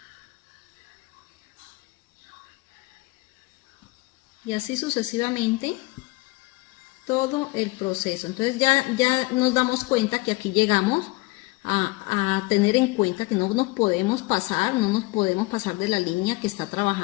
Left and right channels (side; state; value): right; quieter; 22.8 dB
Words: Y así sucesivamente todo el proceso. Entonces ya nos damos cuenta que aquí llegamos a tener en cuenta que no nos podemos pasar de la línea que está